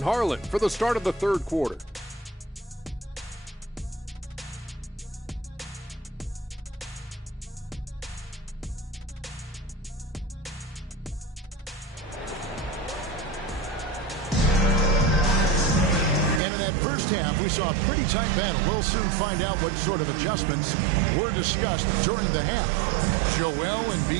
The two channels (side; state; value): left; drops out; at 16.4 s